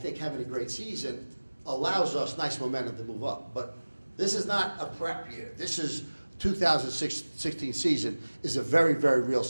having a great season allows us nice momentum to move up. But this is not a prep year. This is 2016 season is a very, very real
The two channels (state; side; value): inverted; both; correlation -1.00